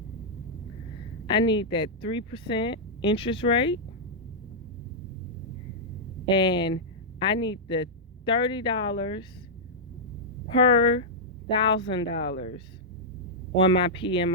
I need that 3% interest rate, and I need the $30 per $1,000 on my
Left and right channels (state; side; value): normal; both; correlation -0.09